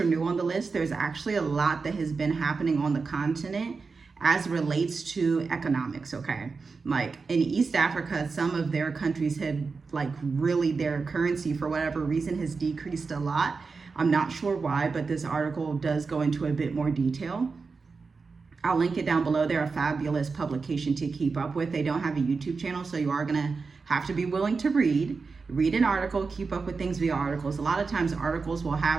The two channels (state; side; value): quieter; left; 4.6 dB